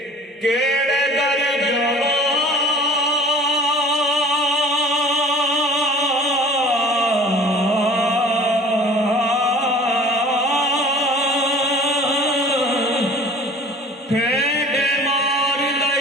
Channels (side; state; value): both; normal; correlation 0.46